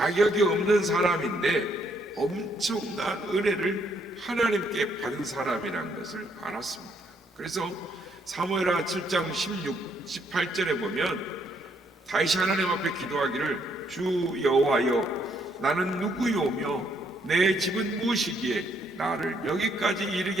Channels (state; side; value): normal; both; correlation 0.71